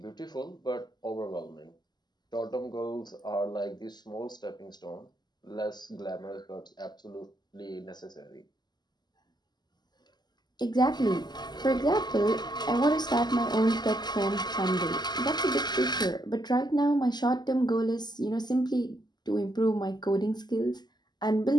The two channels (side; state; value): right; late; 0.21 ms